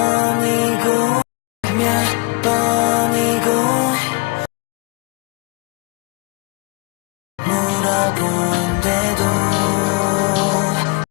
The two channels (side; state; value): right; quieter; 26.7 dB